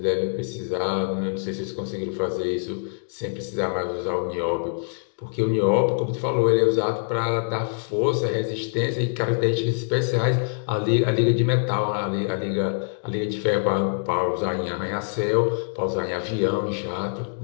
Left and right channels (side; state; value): right; silent; digital silence